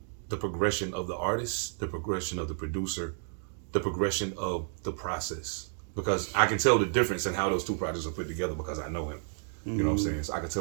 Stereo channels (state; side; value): silent; left; 57 dB below the other